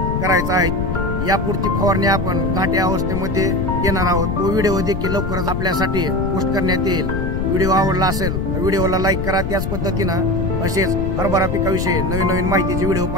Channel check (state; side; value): noise; left; rumble, 3 dB below the sound